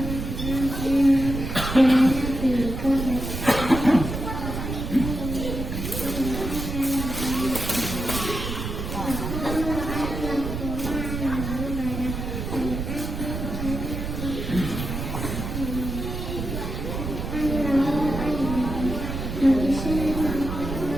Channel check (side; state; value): right; noise; rumble, 5 dB below the sound